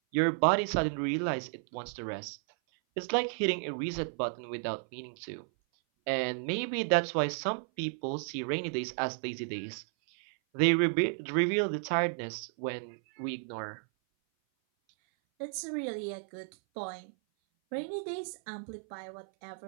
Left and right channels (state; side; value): silent; left; 56 dB below the other